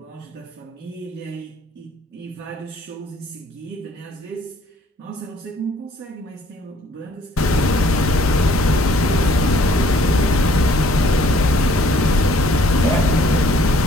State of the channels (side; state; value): both; normal; correlation 0.59